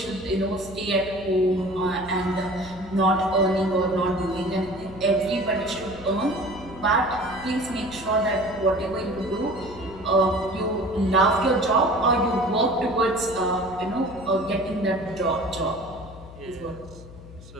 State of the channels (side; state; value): left; noise; hum, 17 dB below the sound